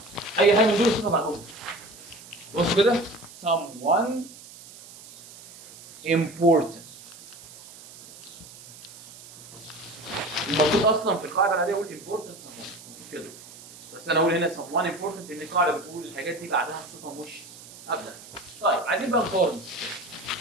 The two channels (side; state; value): right; noise; hiss, 18 dB below the sound